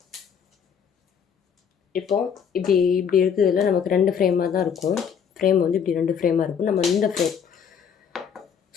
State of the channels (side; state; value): right; quieter; 7.4 dB